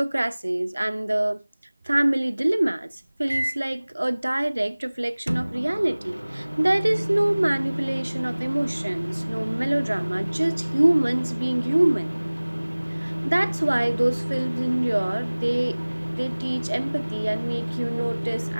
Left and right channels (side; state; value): both; inverted; correlation -1.00